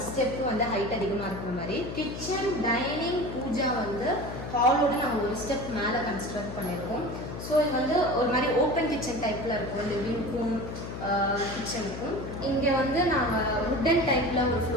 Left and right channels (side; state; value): left; noise; hum, 8 dB below the sound